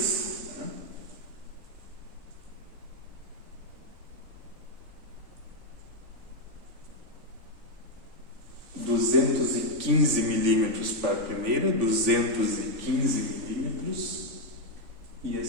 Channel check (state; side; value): late; left; 3.5 ms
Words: 215 milímetros para a primeira, 215 milímetros, e a